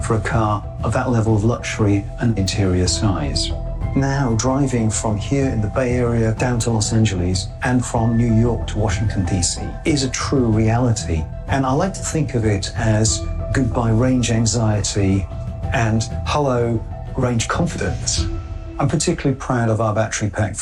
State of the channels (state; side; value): identical; both; correlation 1.00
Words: for a car of that level of luxury and interior size. Now, driving from here in the Bay Area down to Los Angeles and from New York to Washington, D.C. is a true reality. And I like to think of it as goodbye range anxiety and hello range confidence. I'm particularly proud of our battery pack